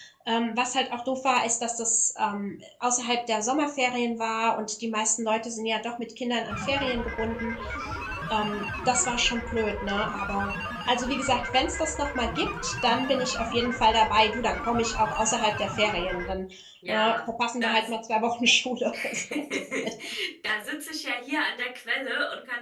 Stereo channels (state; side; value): identical; both; correlation 1.00